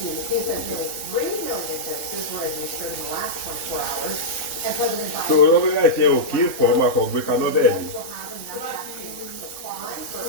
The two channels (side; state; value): right; late; 3.5 ms